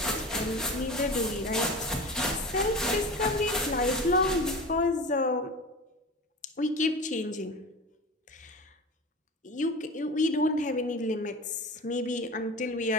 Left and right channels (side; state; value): both; normal; correlation 0.32